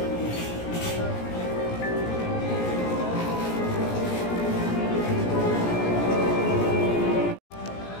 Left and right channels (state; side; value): late; right; 17 ms